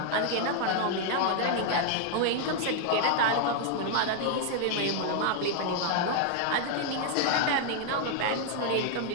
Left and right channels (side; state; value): both; different; correlation 0.00